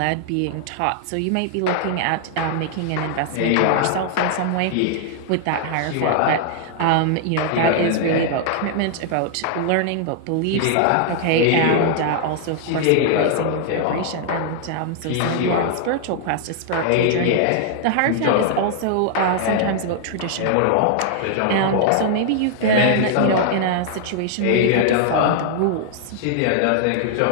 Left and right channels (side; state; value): both; different; correlation -0.01